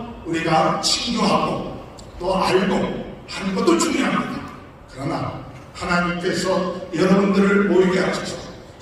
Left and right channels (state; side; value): identical; both; correlation 1.00